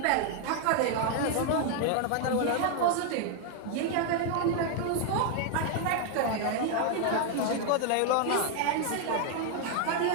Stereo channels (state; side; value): different; both; correlation 0.00